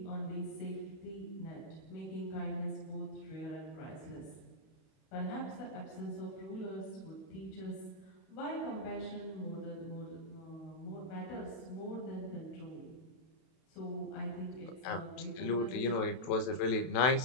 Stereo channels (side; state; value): right; late; 31 ms